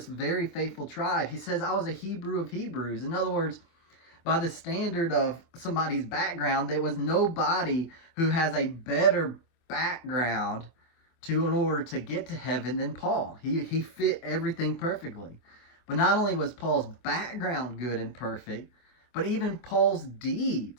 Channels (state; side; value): late; right; 24 ms